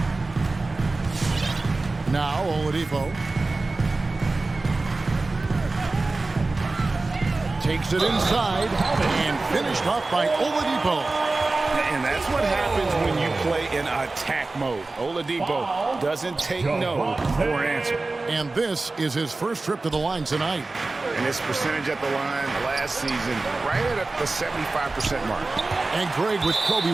Now Oladipo takes it inside and finished off by Oladipo. And that's what happens when you play in attack mode. Oladipo doesn't take no for an answer. And this is his first trip to the line tonight. And his percentage at the line last season, right at the 75% mark. And Greg, with Kobe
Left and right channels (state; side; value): quieter; left; 3.4 dB